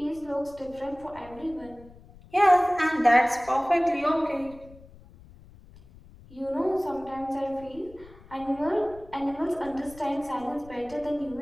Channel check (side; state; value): left; noise; rumble, 21 dB below the sound